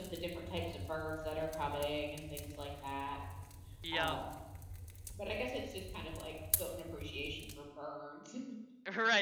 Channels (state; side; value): identical; both; correlation 1.00